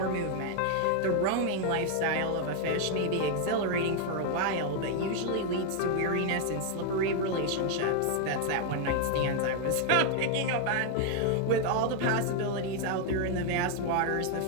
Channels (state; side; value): different; both; correlation 0.00